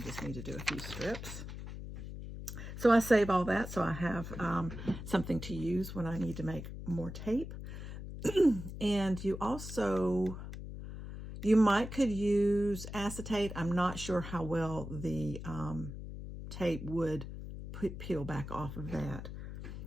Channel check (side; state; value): left; noise; hum, 9 dB below the sound